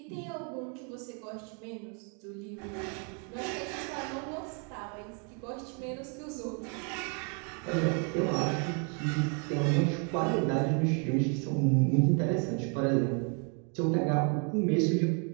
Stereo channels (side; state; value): left; quieter; 38.7 dB